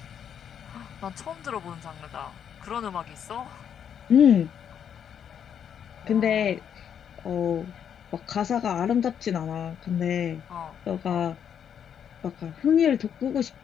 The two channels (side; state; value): right; quieter; 8.4 dB